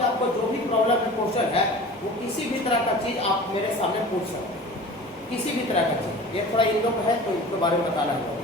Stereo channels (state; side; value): normal; both; correlation 0.39